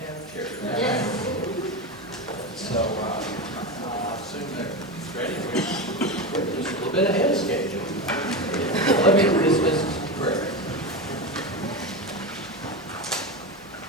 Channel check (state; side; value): normal; both; correlation 0.19